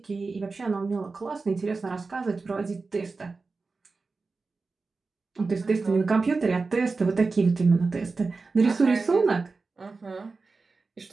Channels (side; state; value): left; quieter; 4.1 dB